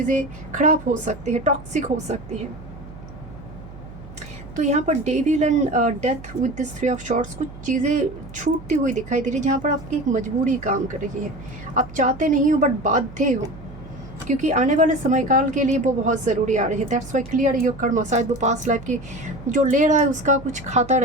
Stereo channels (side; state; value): right; noise; hum, 16 dB below the sound